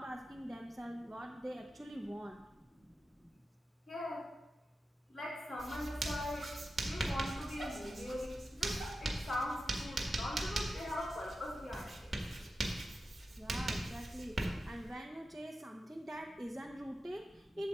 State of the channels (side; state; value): both; normal; correlation 0.91